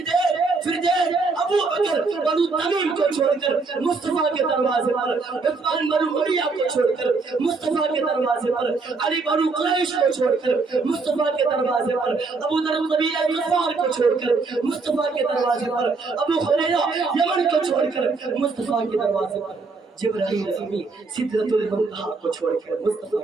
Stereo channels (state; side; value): quieter; left; 4.1 dB